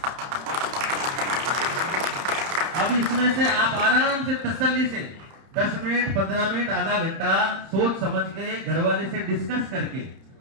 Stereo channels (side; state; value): left; late; 31 ms